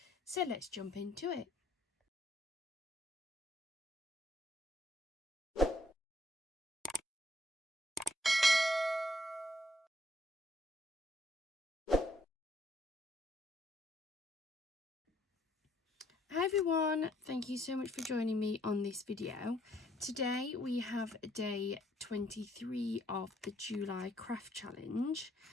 So let's jump into it. Hi everyone, thank you so much for joining me on this video. Today we have day 23 of the July craft challenge.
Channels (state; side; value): normal; both; correlation 0.67